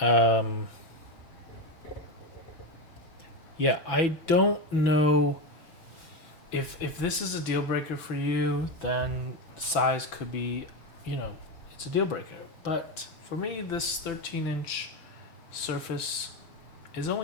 yeah, I don't know if this is a deal breaker for you, then size could be, you know, it's a deal breaker. But for me, this 13-inch surface is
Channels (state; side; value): late; right; 6.0 ms